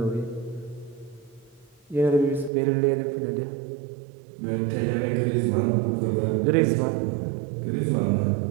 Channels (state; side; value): drops out; left; at 2.5 s